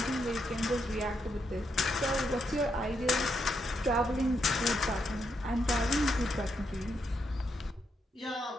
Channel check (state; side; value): normal; both; correlation 0.80